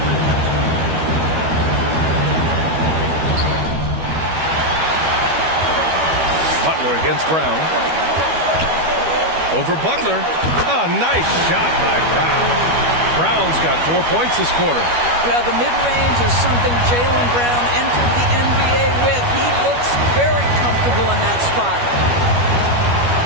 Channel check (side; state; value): left; late; 12 ms